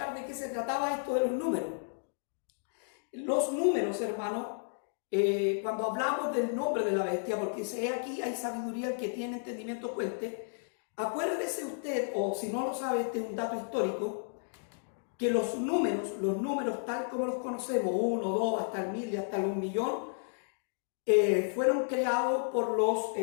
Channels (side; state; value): right; silent; digital silence